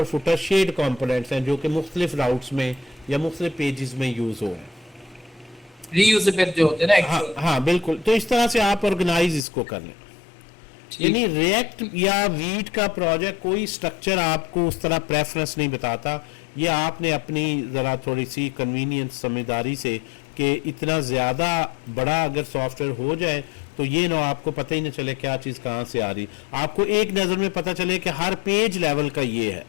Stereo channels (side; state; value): right; drops out; at 9.5 s